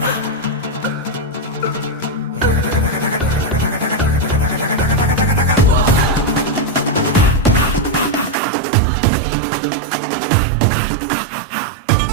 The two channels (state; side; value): drops out; left; at 8.3 s